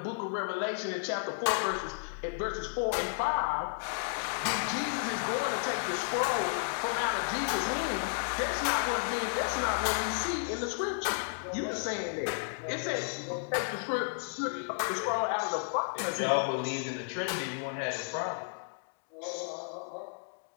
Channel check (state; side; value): silent; right; digital silence